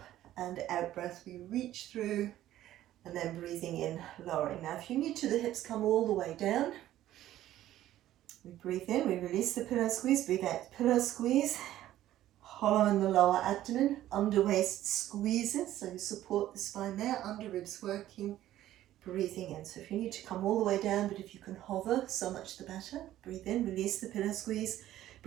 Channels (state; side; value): quieter; left; 13.5 dB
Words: and out breath we reach through, and then breathing in, lowering. Now if you need to, the hips come all the way down. We breathe in, we release the pillow squeeze, breathe out, pillow squeeze, hollow in the lower abdomen, under waist squeezes, so you support the spine there, under ribs working, breathing in. So if you need to come all the way down, but if you can hover, so much the better. Breathe in, release the pillow squeeze,